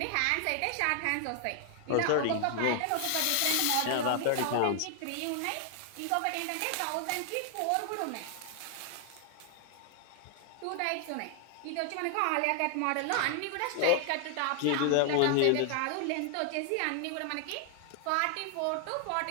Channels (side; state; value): both; different; correlation 0.00